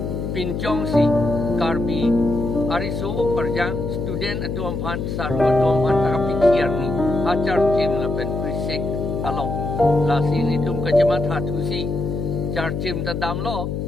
pinjong si karbi ariso perjang student atu amhan saru atu amhan takapikir ni acar jim lapen prisik along la sini tum kajamat hatu si char jim ta dam lo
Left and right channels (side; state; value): left; noise; hum, 3 dB below the sound